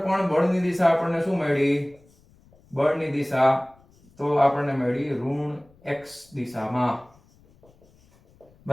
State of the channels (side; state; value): left; noise; rumble, 30 dB below the sound